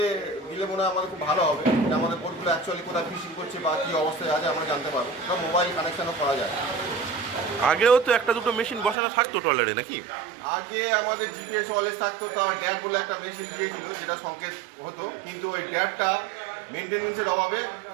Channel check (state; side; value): drops out; left; at 9.0 s